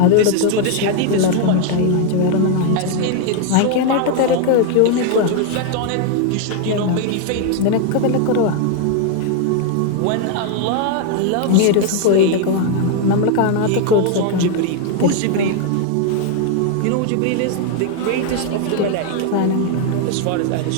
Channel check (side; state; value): both; different; correlation 0.00